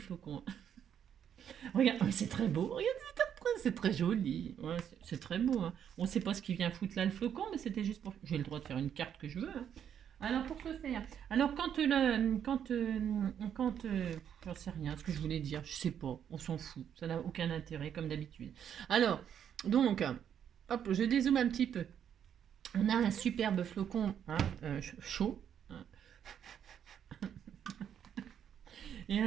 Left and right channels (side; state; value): left; quieter; 8.9 dB